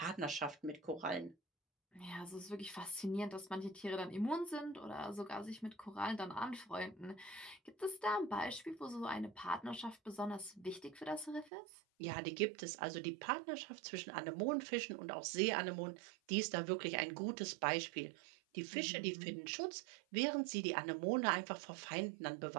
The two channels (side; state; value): left; drops out; at 11.5 s